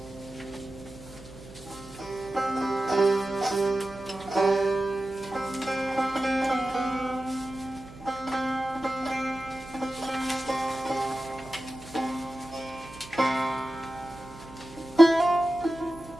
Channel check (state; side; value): noise; right; hum, 18 dB below the sound